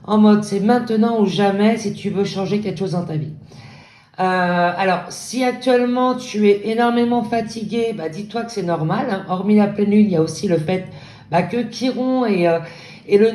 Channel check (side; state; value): both; identical; correlation 1.00